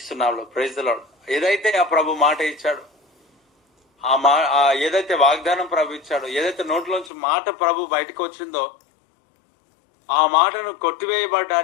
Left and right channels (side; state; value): right; drops out; at 7.1 s